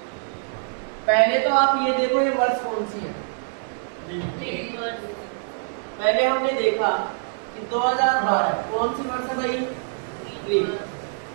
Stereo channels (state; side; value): silent; left; digital silence